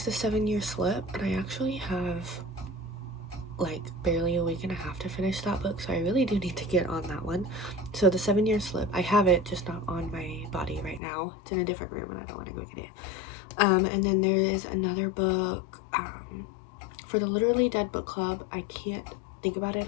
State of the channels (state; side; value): drops out; right; at 11.0 s